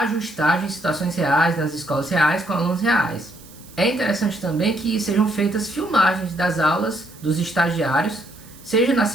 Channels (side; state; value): right; noise; hiss, 22 dB below the sound